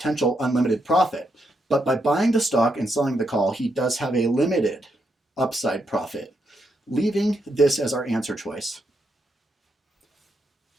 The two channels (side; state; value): both; normal; correlation 0.80